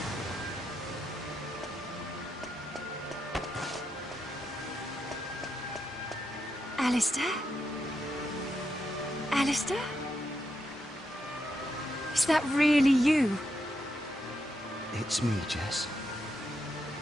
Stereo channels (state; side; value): normal; both; correlation 0.83